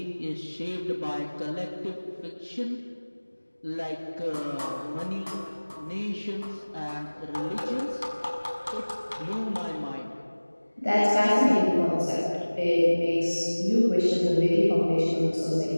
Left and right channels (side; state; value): both; inverted; correlation -1.00